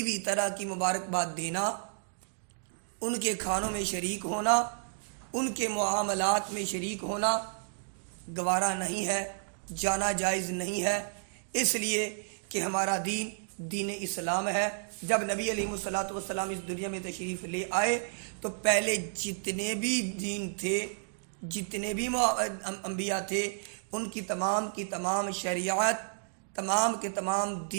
بھی طرح کی مبارکباد دینا، ان کے کھانوں میں شریک ہونا، ان کے معاملات میں شریک ہونا گوارا نہیں ہے، جانا جائز نہیں ہے، اس لیے کہ ہمارا دین دین اسلام ہے۔ جب نبی علیہ السلام اس دنیا میں تشریف لے آئے تو پہلے جتنے بھی دین تھے، جتنے بھی انبیاء تھے، ان کی تمام شریعت، تمام کے تمام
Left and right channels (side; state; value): left; silent; digital silence